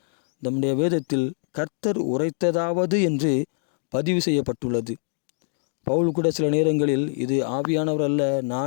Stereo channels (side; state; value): right; silent; 62 dB below the other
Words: நம்முடைய வேதத்தில் கர்த்தர் உரைத்ததாவது என்று பதிவு செய்யப்பட்டுள்ளது. பவுல் கூட சில நேரங்களில் இது ஆவியானவர் அல்ல,